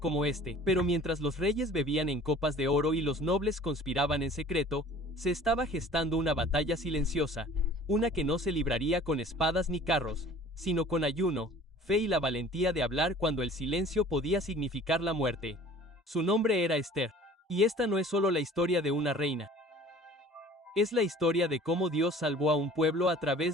este, pero mientras los reyes bebían en copas de oro y los nobles conspiraban en secreto, se estaba gestando una batalla silenciosa, una que no se libraría con espadas ni carros, sino con ayuno, fe y la valentía de hablar cuando el silencio podía significar la muerte. Su nombre era Esther. Y esta no es solo la historia de una reina. Es la historia de cómo Dios salvó a un pueblo a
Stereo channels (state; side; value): normal; both; correlation 0.47